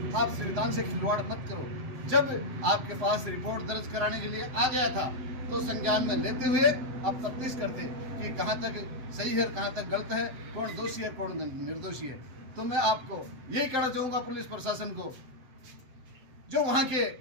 आप संविधान से खिलवाड़ मत करो। जब आपके पास रिपोर्ट दर्ज कराने के लिए आ गया था तो संज्ञान में लेते हुए आप तफ्तीश करते कि कहाँ तक सही है, कहाँ तक गलत है, कौन दोषी है, कौन निर्दोषी है। तो मैं आपको यही कहना चाहूँगा पुलिस प्रशासन को, जो वहाँ के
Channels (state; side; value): late; left; 7.9 ms